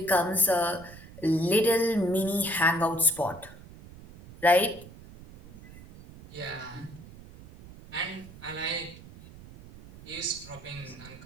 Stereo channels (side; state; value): right; noise; rumble, 18 dB below the sound